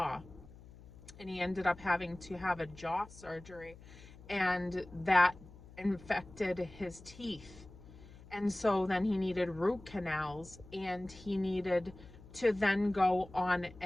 and he ended up having to have a jaw surgery, and that infected his teeth. And so then he needed root canals, and he needed to then go on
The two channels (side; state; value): left; noise; hum, 19 dB below the sound